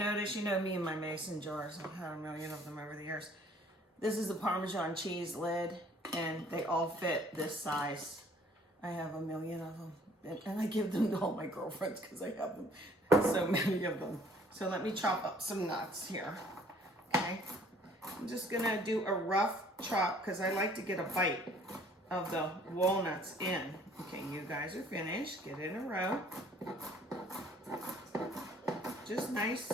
you know me and my mason jars, I've had a million of them over the years. This is the Parmesan cheese lid, and they all fit this size. I have a million of them, and I give them to all my girlfriends because I have them, so many of them. So let me chop up some nuts here, okay? I'm just going to do a rough chop because I like to get a bite of the walnuts in. Okay, you guys are finished. Get in a row. Just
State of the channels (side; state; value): both; normal; correlation 0.57